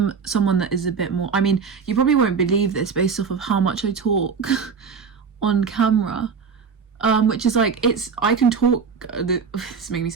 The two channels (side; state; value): left; quieter; 5.8 dB